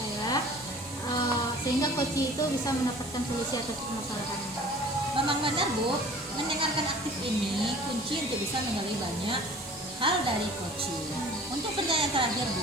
sehingga coach itu bisa mendapatkan solusi atas permasalahannya. Memang benar, Bu, mendengarkan aktif ini kunci untuk bisa menggali banyak hal dari coaching. Untuk pertanyaan terakhir,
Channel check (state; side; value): normal; both; correlation 0.47